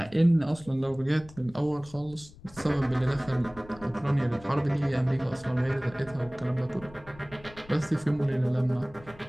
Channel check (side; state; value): left; noise; rumble, 21 dB below the sound